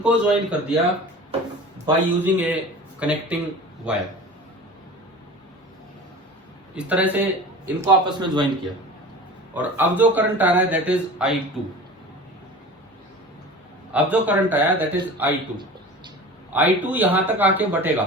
ज्वाइन कर दिया by using A connecting wire. इस तरह से इनको आपस में ज्वाइन किया और अब जो करंट आ रहा है दैट इज I2। अब जो करंट आया दैट इज I2 यहां तक आके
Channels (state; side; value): normal; both; correlation 0.37